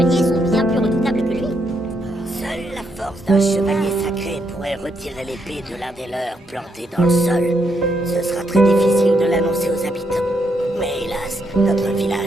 sont bien plus redoutables que lui. Seule la force d'un chevalier sacré pourrait retirer l'épée de l'un des leurs plantée dans le sol. Ce sera très difficile de l'annoncer aux habitants. Mais hélas, notre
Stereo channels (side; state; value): both; normal; correlation 0.78